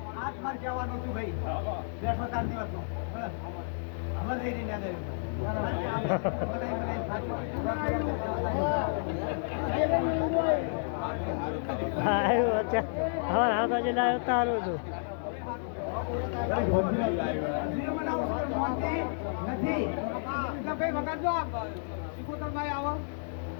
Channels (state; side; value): silent; right; digital silence